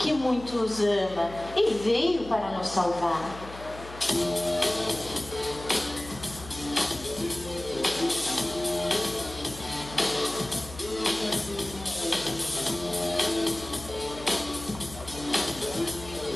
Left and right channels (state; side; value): noise; left; hum, 15 dB below the sound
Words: muito nos ama e veio para nos salvar.